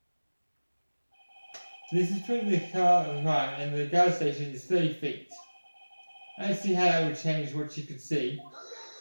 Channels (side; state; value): both; inverted; correlation -1.00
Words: The distance between the car and the crime and the guard station is 30 feet. I don't see how that would change what she could see.